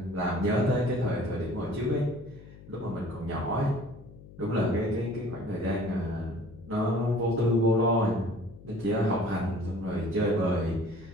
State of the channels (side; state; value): left; noise; hum, 19 dB below the sound